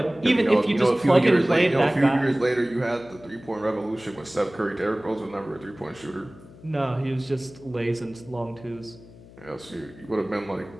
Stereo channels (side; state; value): left; noise; hum, 21 dB below the sound